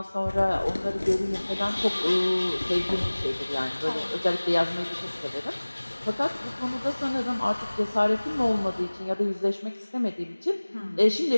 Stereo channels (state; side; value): inverted; both; correlation -1.00